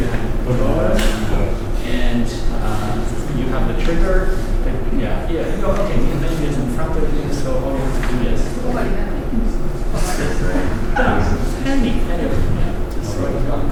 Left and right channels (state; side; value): identical; both; correlation 1.00